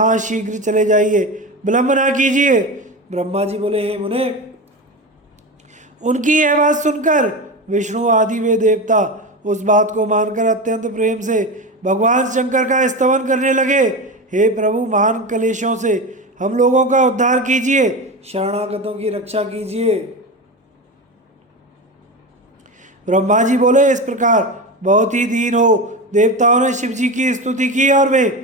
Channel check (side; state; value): both; normal; correlation 0.22